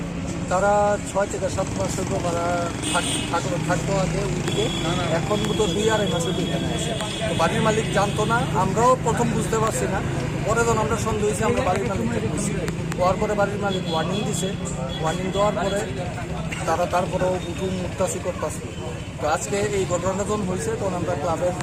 তারা 6 থেকে 7 মাস হয়তো ভাড়া থাকতো আগে ওইদিকে, এখন তো 2-2.5 মাস হয়তো এখানে আসে। তো বাড়ির মালিক জানতো না, আমরাও প্রথম বুঝতে পারছি না, পরে যখন আমরা সন্দেহ হয়েছি আমরা বাড়ির মালিককে বুঝছি। হওয়ার পরে বাড়ির মালিক ওয়ার্নিং দিছে, ওয়ার্নিং দেওয়ার পরে তারা তারপরেও উঠুন মুক্তাসি করতেছে। তো আজকে এই ঘটনাটা যখন হয়েছে তখন আমরা ক্লাবের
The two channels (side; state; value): both; identical; correlation 1.00